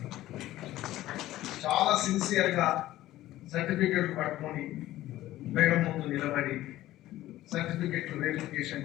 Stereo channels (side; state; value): right; quieter; 15.2 dB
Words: me, చాలా సిన్సియర్గా సర్టిఫికెట్లు పట్టుకొని madam ముందు నిలబడి సర్టిఫికెట్లు verification